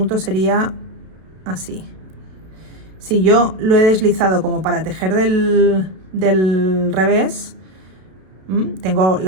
sería así. Si yo lo he deslizado como para tejer del revés, tengo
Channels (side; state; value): left; late; 32 ms